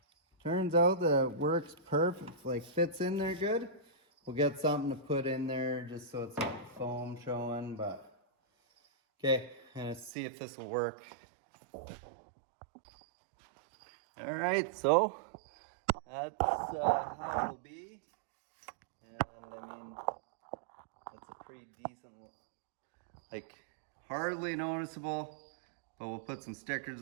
turns out that it works perfect, like fits in there good, we'll get something to put in there just so it's like foam showing. But okay, and see if this will work. All right, so that's how it'll be. And I mean, that's a pretty decent, like hardly noticeable, but we'll put some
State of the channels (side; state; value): left; drops out; at 10.1 s